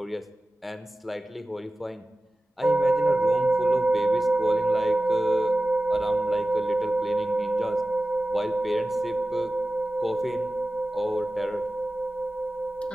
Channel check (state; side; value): normal; both; correlation 0.96